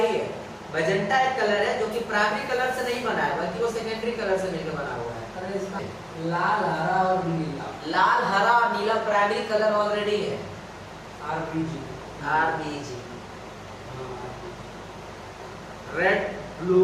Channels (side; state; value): both; identical; correlation 1.00